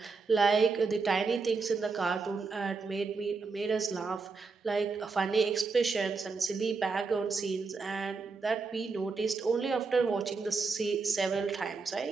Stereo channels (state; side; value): quieter; left; 4.5 dB